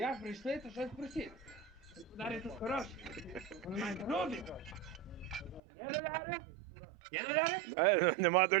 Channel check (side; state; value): left; drops out; at 5.6 s